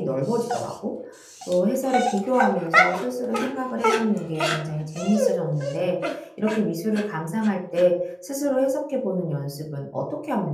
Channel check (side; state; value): both; identical; correlation 1.00